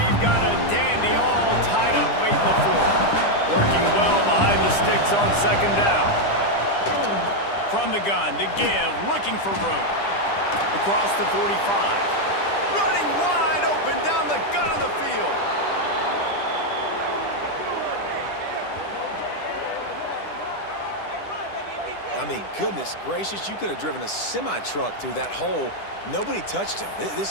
got a dandy all tied up late in the 4th. Working well behind the sticks on 2nd down. From the gun, to give, looking for room. Across the 45. Running wide open down the gun of the field. I mean, goodness gracious, you could have driven a semi-truck through that hole. Nobody touched him.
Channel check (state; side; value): late; right; 10 ms